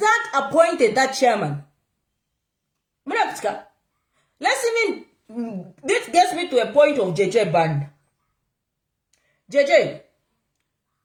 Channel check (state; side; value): identical; both; correlation 1.00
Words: appointed that chairman. Let's even, this gets me to a point of JJ Band. JJ,